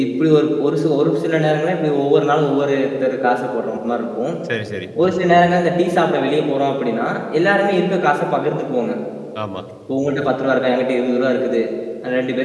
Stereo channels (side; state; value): both; identical; correlation 1.00